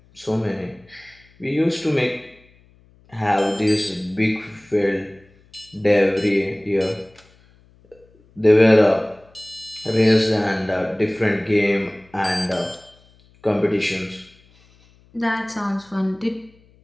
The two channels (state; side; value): noise; left; hum, 30 dB below the sound